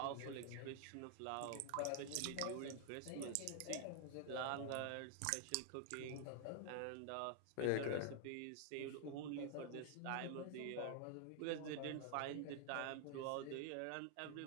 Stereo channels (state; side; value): different; both; correlation 0.00